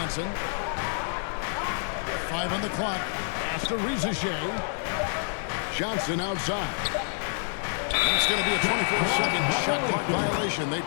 5 on the clock. Pass to Shea. Johnson outside. That's going to be a 24-second shot clock violation. They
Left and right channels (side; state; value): right; silent; 60 dB below the other